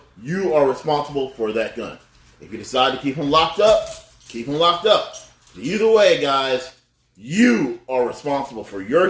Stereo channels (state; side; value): identical; both; correlation 1.00